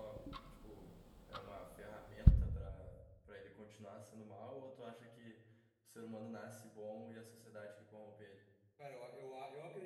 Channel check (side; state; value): both; identical; correlation 1.00